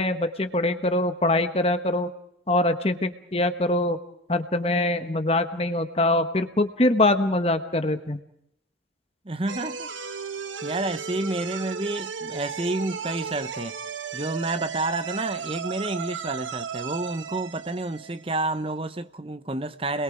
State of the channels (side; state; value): both; normal; correlation 0.30